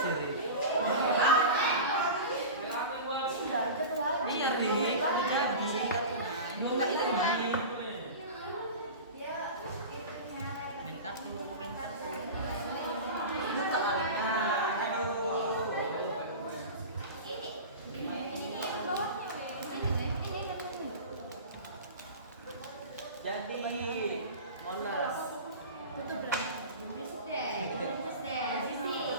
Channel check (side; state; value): both; inverted; correlation -0.31